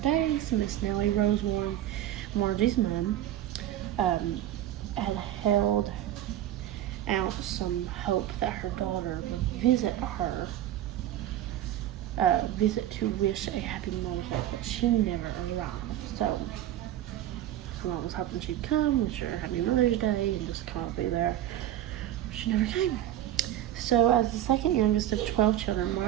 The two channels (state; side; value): quieter; left; 12.6 dB